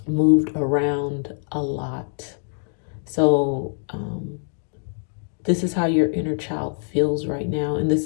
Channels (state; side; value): silent; right; 59 dB below the other